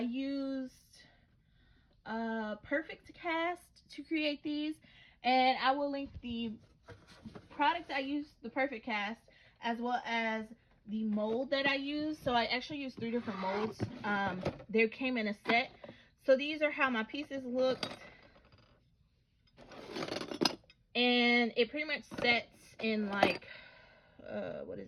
Perfect Cast to create these, and I will link the product I used, the Perfect Cast, as well as the mold that I used. So I actually used 3 different molds. They came in a set. So these are how my pieces looked, and it pretty much sets in like what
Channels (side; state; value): both; identical; correlation 1.00